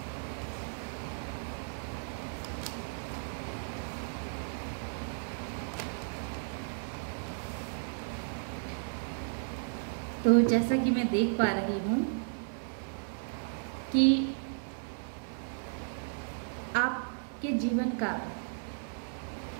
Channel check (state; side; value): silent; left; 55 dB below the other